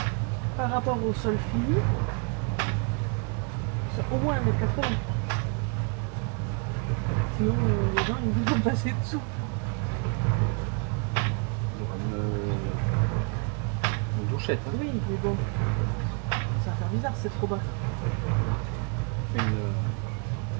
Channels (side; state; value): left; quieter; 37.9 dB